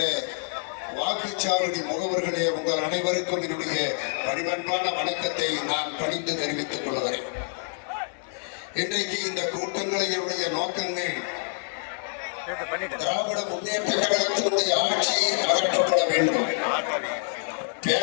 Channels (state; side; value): silent; right; digital silence